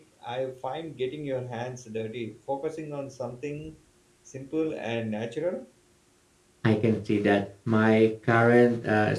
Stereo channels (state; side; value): identical; both; correlation 1.00